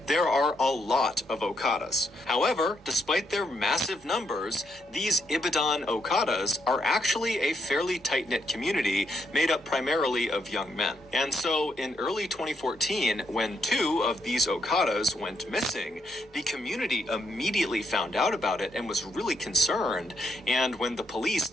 there are a lot of Okadas. However, despite their massive numbers, these Ibadan Okadas are actually a fairly tight-knit community made up primarily of young men. And so, in early 2014, when 2 of these Okadas went missing, the community immediately found out about it and was really concerned. And when the police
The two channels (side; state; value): both; normal; correlation 0.76